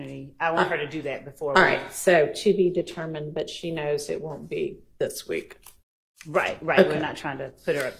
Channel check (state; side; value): identical; both; correlation 1.00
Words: I want her to do that before. All right. So to be determined, but she knows it won't be this week. Right. Okay. We're not trying to put her